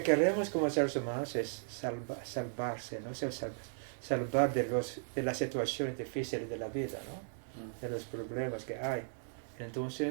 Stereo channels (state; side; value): silent; left; digital silence